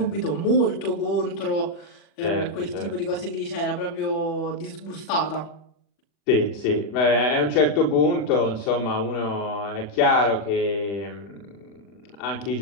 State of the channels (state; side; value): late; right; 40 ms